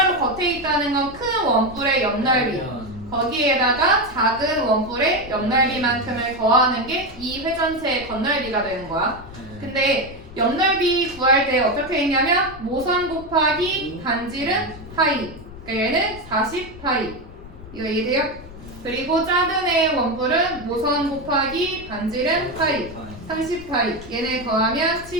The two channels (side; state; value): left; noise; rumble, 17 dB below the sound